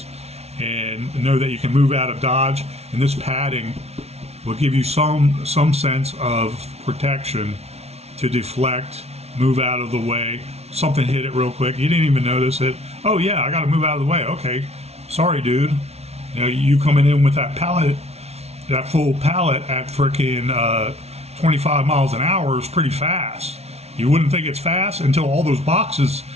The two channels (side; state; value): left; late; 0.31 ms